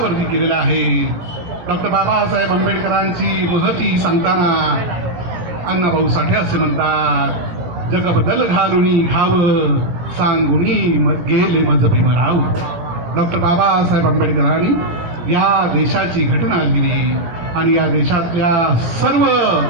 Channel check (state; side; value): late; left; 18 ms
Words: केलेले आहे. डॉक्टर बाबासाहेब आंबेडकरांची महती सांगताना अण्णाभाऊ साठे असे म्हणतात, जग बदल घालुनी घावं, सांगुनी गेले मज भीमराव. डॉक्टर बाबासाहेब आंबेडकरांनी या देशाची घटना लिहिली आणि या देशातल्या सर्व